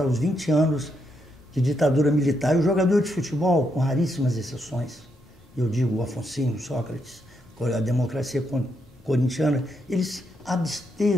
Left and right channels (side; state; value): both; normal; correlation 0.79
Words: os 20 anos de ditadura militar. E o jogador de futebol, com raríssimas exceções, eu digo o Afonsinho, Sócrates, a democracia corintiana, eles